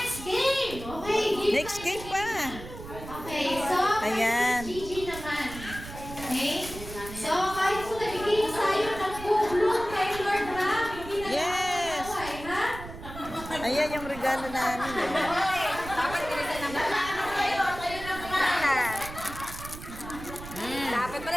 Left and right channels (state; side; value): noise; right; rumble, 12 dB below the sound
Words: game! Okay, give Next game pa. Okay, so, Ayan. Gigi naman. Okay? So, kahit kung nagiging sa'yo, nag-bloom kay Lord Ram, hindi na Yes. nakakaway, ha? Ayan yung regalo namin, oh. Dapat bilisan naman. Kayo na kumain. Dapat